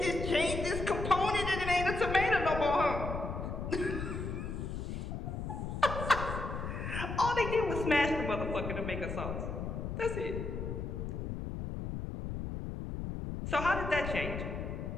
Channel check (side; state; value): left; noise; rumble, 4 dB below the sound